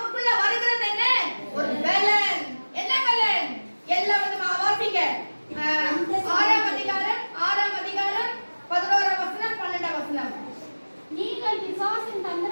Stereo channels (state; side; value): inverted; both; correlation -1.00